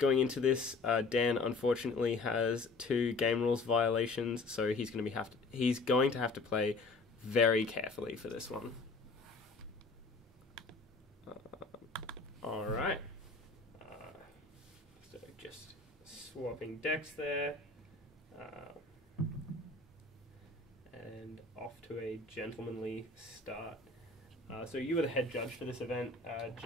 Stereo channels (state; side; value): quieter; right; 3.6 dB